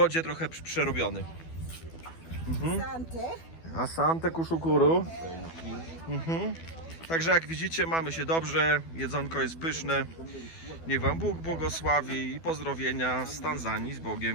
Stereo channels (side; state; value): right; late; 12 ms